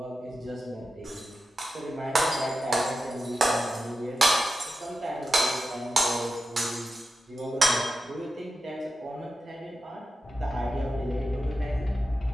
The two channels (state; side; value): normal; both; correlation 0.89